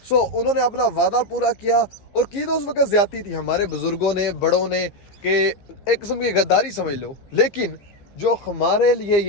सो उन्होंने अपना वादा पूरा किया और की तो उस वक्त ज्यादती थी हमारे बुजुर्गों ने, बड़ों ने, कि एक किस्म की गद्दारी समझ लो। लेकिन जो हमारे लिए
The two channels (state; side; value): late; right; 15 ms